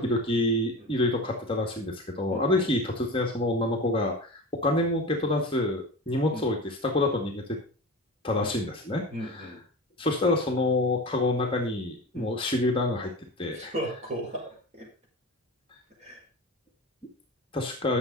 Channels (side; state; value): both; normal; correlation 0.30